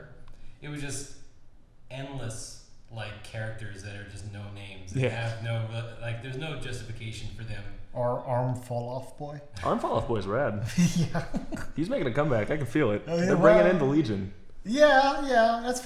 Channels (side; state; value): both; identical; correlation 1.00